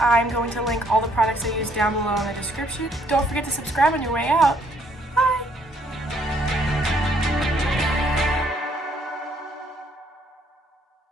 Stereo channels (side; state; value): both; normal; correlation 0.67